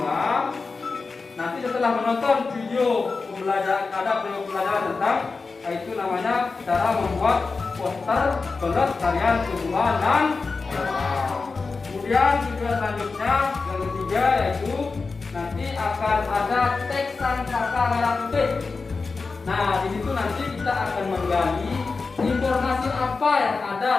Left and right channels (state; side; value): quieter; right; 4.3 dB